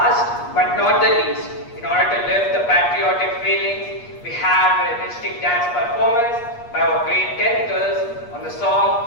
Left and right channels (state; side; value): late; right; 8.4 ms